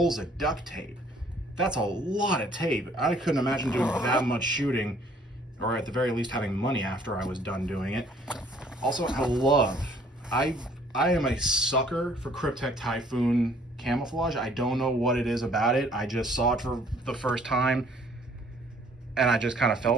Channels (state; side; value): normal; both; correlation 0.59